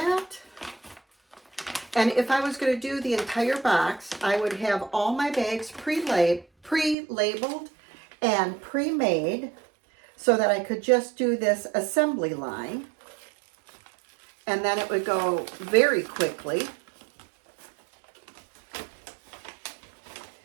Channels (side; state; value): left; drops out; at 7.0 s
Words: And if I was going to do the entire box, I would have all my bags pre-labeled and pre-made so that I could just do this assembly line. And then it would go very quickly.